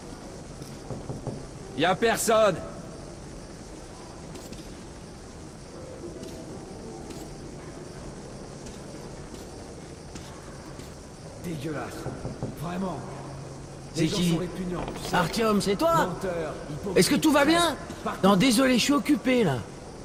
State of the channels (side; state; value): both; identical; correlation 1.00